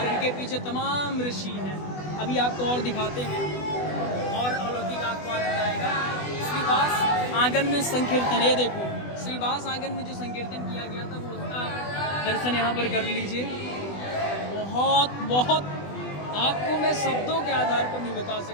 इनके पीछे तमाम ऋषि हैं। अभी आपको और दिखाते हैं और अलौकिक आपको आनंद आएगा। श्रीवास आंगन में संकीर्तन, ये देखो श्रीवास आंगन में जो संकीर्तन किया गया था वो उसका दर्शन यहाँ पर कर लीजिए। बहुत बहुत आपको मैं शब्दों के आधार पर नहीं बता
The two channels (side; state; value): right; late; 20 ms